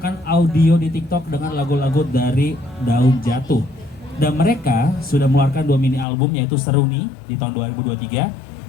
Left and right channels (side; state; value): right; drops out; at 6.1 s